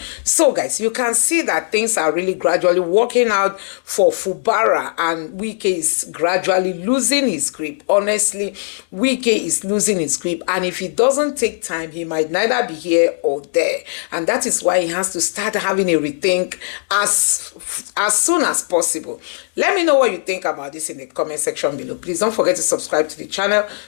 So guys, you can see that things are really gradually working out for Fubara, and Wike is gradually losing his grip. Honestly, Wike is losing his grip, and if he doesn't take time, he might neither be here or there, and that is why he has to start having a rethink as soon as possible. Let me know what you think about this in the comment section below. Please don't forget to subscribe to the channel,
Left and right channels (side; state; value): right; silent; digital silence